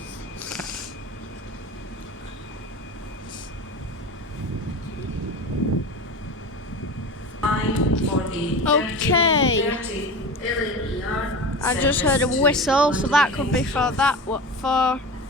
Okay. I just heard a whistle, so that could be for that. What for?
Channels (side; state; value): both; normal; correlation 0.30